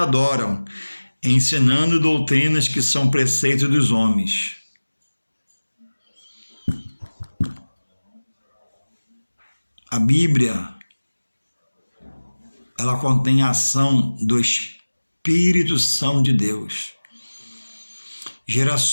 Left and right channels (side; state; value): both; inverted; correlation -1.00